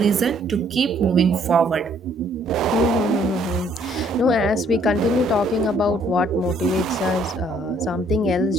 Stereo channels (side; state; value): both; normal; correlation 0.64